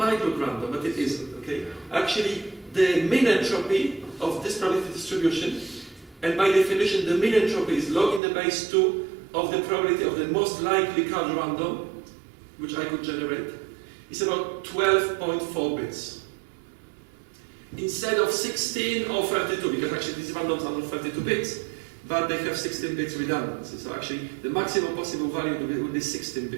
look random, but it isn't. Okay? Actually, the mean entropy of this probability distribution, and by definition, the mean entropy is log in the base 2 of the probability of the most likely card random, which I could generate, is about 12.4 bits. Instead of 16 or 32, because actually these randoms are not 32 bits, but they have 16 bits redundancy. So actually, the maximum possible value would be 16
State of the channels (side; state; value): left; drops out; at 8.2 s